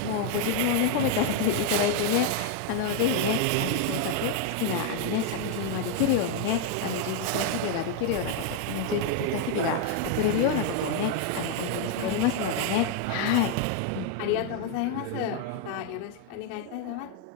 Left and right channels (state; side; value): different; both; correlation 0.00